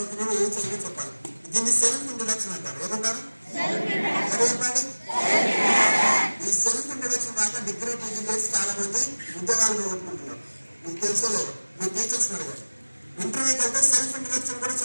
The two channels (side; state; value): both; inverted; correlation -1.00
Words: ఏ చదివి చెప్పాలి. దీన్ని సెల్ఫ్ ఇంట్రొడక్షన్ అంటారు. ఏమంటారు? చెప్పండి. ఈ సెల్ఫ్ ఇంట్రొడక్షన్ దాకా డిగ్రీ పీజీ చేసి చాలా మంది ఉద్యోగాలు పోగొట్టుకుంటున్నారు. మీకు తెలుసో లేదు, మీ టీచర్స్ అడిగారు. ఇంటర్వ్యూకి వెళ్తే సెల్ఫ్ ఇంట్రొడక్షన్ కూడా